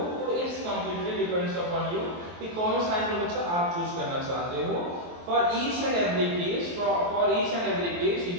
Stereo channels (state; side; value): late; left; 23 ms